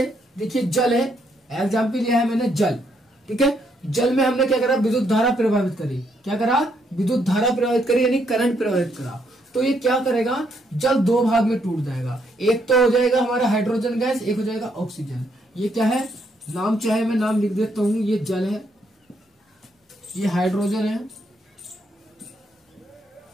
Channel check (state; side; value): normal; both; correlation 0.74